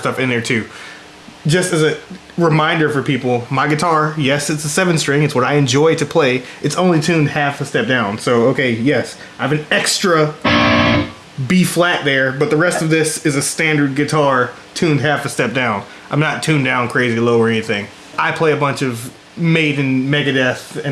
in there too. Just as a reminder for people, my guitar, yes, it's a 7-string. It's what I enjoy to play. It's only tuned half a step down. So, okay, yes, I have an extra B flat there, but the rest of this is a standard guitar tuned half a step down. I'm not tuned down crazy low or anything. I play a bunch of Maiden, Megadeth,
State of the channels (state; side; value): identical; both; correlation 1.00